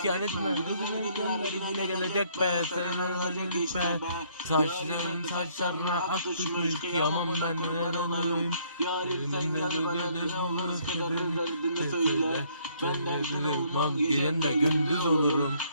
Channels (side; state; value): both; inverted; correlation -0.65